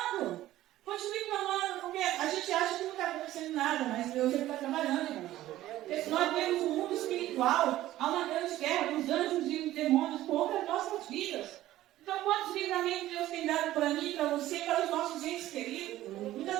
Continue clamando, porque a gente acha que não está acontecendo nada, mas Deus está trabalhando, irmão. Nós temos um mundo espiritual, há uma grande guerra dos anjos e os demônios contra as nossas vidas. Então, quantos livramentos Deus tem dado para mim, para você, para os nossos entes queridos? Muitas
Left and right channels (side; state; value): left; quieter; 14.7 dB